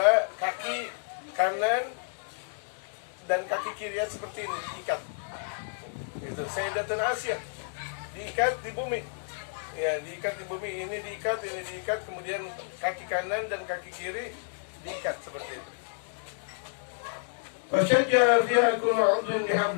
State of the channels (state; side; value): silent; right; digital silence